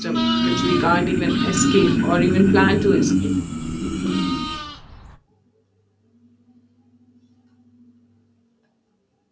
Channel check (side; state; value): both; identical; correlation 1.00